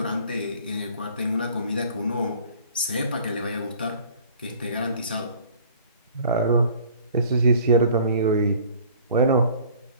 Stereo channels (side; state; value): both; inverted; correlation -0.51